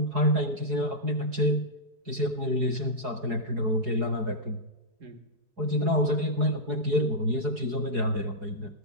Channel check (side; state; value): left; late; 4.8 ms